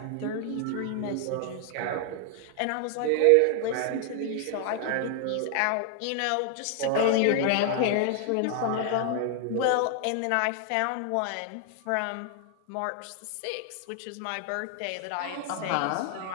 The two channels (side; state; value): both; different; correlation 0.00